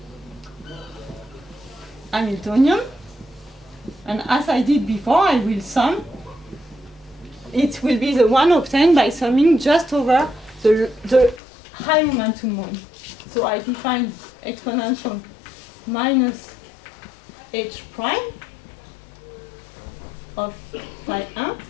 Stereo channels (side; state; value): right; drops out; at 11.4 s